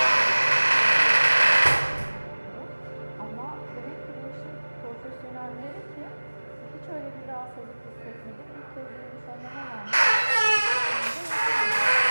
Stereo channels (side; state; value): both; inverted; correlation -1.00